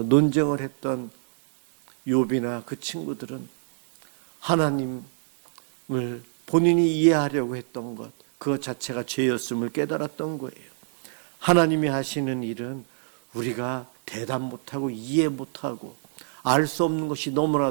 논쟁을 했던 욥이나 그 친구들은 하나님을 본인이 이해하려고 했던 것, 그것 자체가 죄였음을 깨달았던 거예요. 하나님이 하시는 일은 우리가 대답 못하고 이해 못하고 알 수 없는 것이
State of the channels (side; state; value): left; silent; digital silence